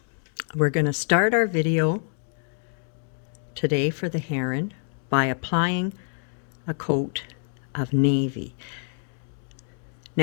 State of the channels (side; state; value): right; silent; digital silence